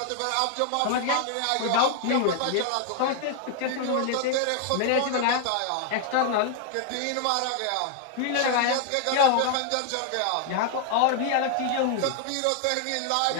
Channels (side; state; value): both; different; correlation 0.00